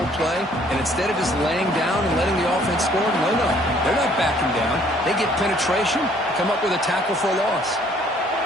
play, and instead of just laying down and letting the offense score, no, they're not backing down. They get penetration, come up with a tackle for a loss.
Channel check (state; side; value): normal; both; correlation 0.61